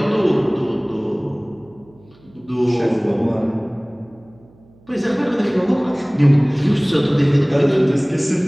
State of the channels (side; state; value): right; noise; hum, 29 dB below the sound